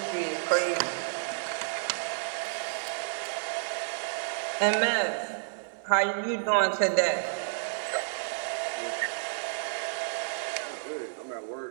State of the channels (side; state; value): left; silent; 57 dB below the other